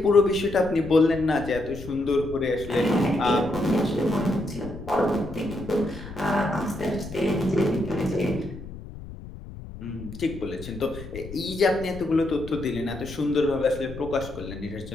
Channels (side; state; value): left; noise; rumble, 13 dB below the sound